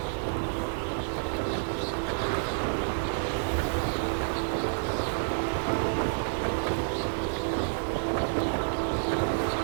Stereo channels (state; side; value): silent; left; digital silence